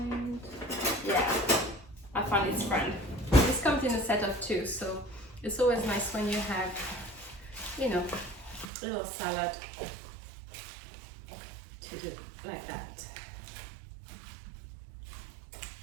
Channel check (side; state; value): left; drops out; at 8.7 s